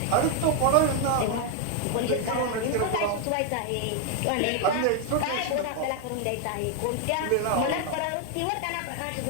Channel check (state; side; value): different; both; correlation 0.00